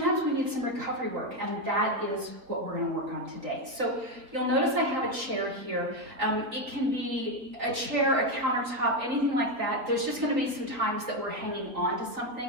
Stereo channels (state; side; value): late; left; 3.7 ms